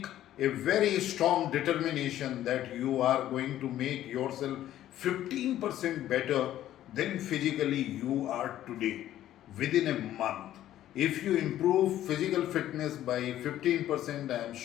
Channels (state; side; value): quieter; right; 12.7 dB